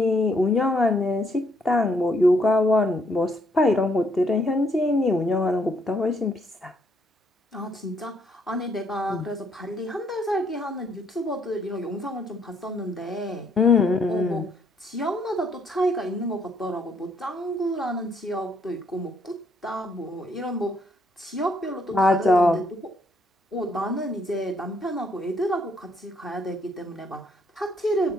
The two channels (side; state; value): both; normal; correlation 0.70